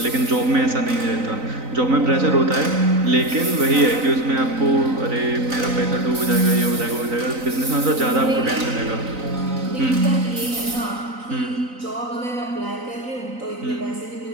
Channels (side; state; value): left; late; 3.9 ms